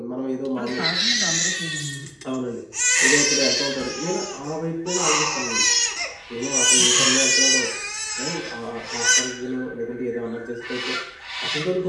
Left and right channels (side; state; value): both; identical; correlation 1.00